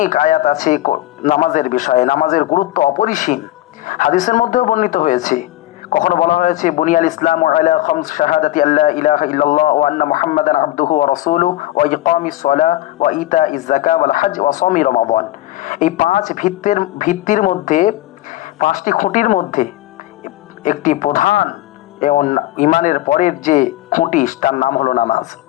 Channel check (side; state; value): right; quieter; 16.1 dB